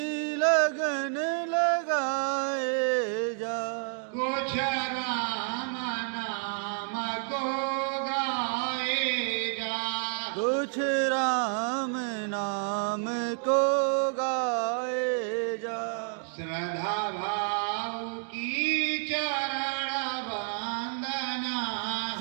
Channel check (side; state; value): left; silent; 56 dB below the other